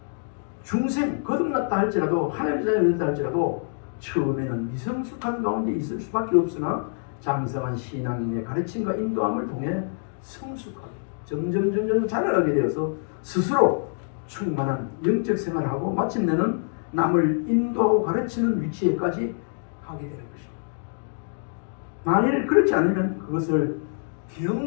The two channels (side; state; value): right; silent; digital silence